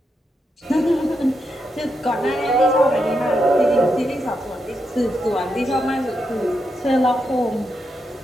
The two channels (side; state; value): both; normal; correlation 0.84